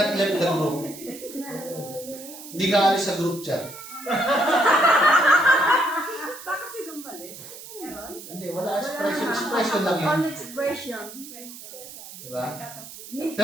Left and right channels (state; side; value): noise; right; hiss, 14 dB below the sound